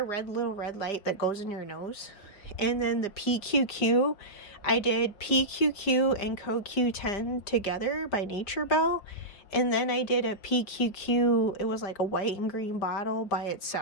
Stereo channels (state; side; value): late; right; 5.1 ms